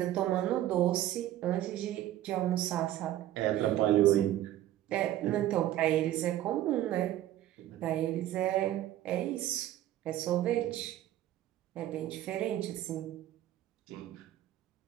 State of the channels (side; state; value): left; quieter; 13.4 dB